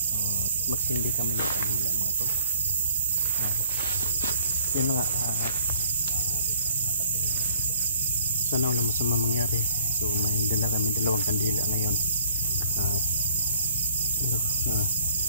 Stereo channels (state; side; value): inverted; both; correlation -0.60